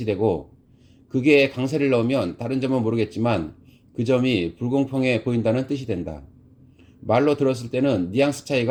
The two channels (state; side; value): identical; both; correlation 1.00